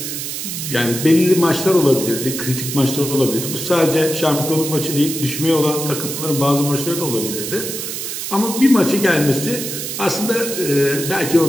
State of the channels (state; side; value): noise; right; hiss, 5 dB below the sound